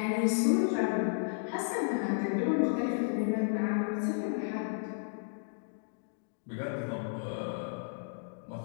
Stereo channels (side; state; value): right; silent; digital silence